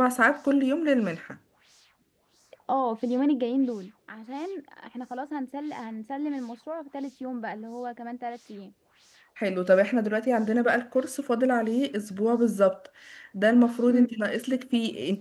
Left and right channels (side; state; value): both; identical; correlation 1.00